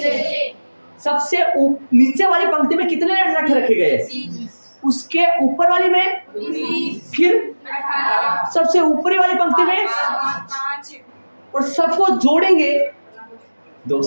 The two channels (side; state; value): both; inverted; correlation -1.00